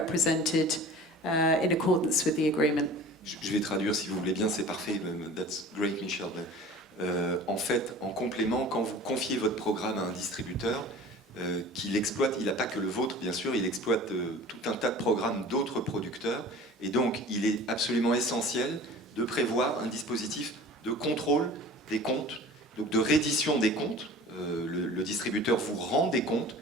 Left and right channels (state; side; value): normal; both; correlation 0.41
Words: in accordance with the agreement. Je vais traduire si vous voulez bien, c'est parfait. That's great, Michel. En fait, en complément, quand vous confiez votre programme à un distributeur, qu'il exploite, il n'a pas que le vôtre, bien sûr, il exploite tout un tas de programmes d'autres producteurs. Et donc, il est absolument essentiel de prévoir un dispositif de contrôle des comptes, donc de reddition des comptes. Le distributeur vous rend des comptes